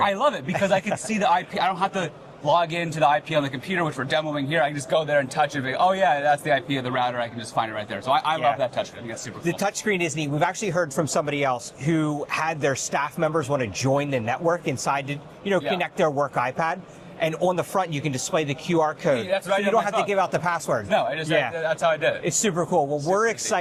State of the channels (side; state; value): both; identical; correlation 1.00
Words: I love it because I can see the IP. I don't have to log into the IP on the computer, which we're demoing here. I can just go there and touch it. And oh yeah, that's the IP of the router. I can just find it right there. So I love that touchscreen. I think that's super cool. The touchscreen is neat. We've actually heard from somebody else who had their staff members want to join the network inside to, connect their work iPad. And on the front, you can display the QR code. That's right. So you don't have to give out the password. No, that's how I did it. It's super cool. Well, we're